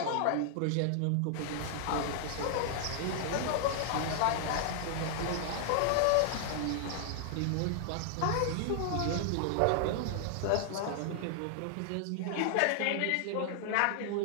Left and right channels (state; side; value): different; both; correlation -0.01